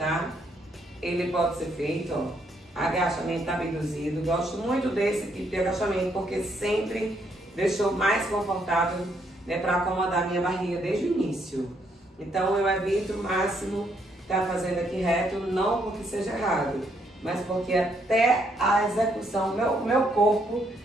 Ele pode ser feito, ó, agachamento abduzido. Gosto muito desse tipo de agachamento, porque sempre deixou mais confortável, né, para acomodar a minha barriga desde o início. Então, eu evito o máximo estar fazendo aqui reto, não porque seja errado, mas porque até a execução, meu corpo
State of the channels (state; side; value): normal; both; correlation 0.73